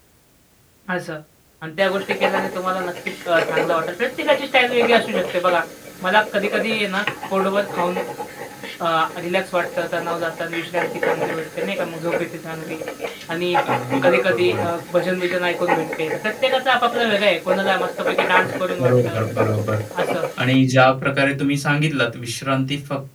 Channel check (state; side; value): identical; both; correlation 1.00